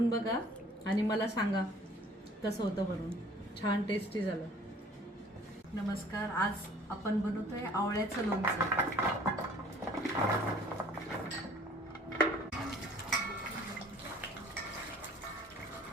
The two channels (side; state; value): both; normal; correlation 0.53